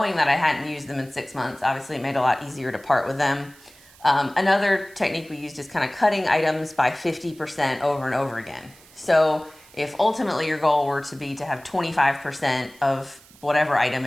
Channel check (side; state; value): right; noise; hiss, 25 dB below the sound